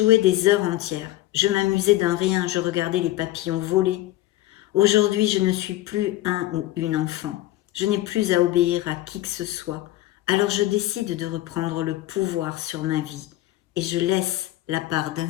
des heures entières. Je m'amusais d'un rien, je regardais les papillons voler. Aujourd'hui, je ne suis plus un ou une enfant. Je n'ai plus à obéir à qui que ce soit. Alors je décide de reprendre le pouvoir sur ma vie et je laisse la part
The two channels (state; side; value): quieter; right; 15.9 dB